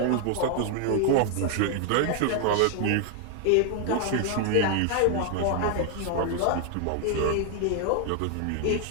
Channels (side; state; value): both; different; correlation 0.00